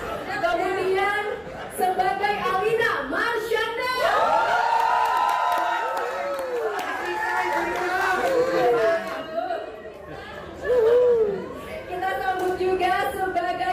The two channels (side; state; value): both; identical; correlation 1.00